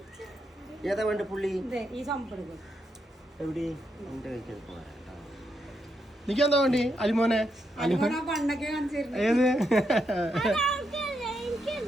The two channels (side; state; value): both; normal; correlation 0.81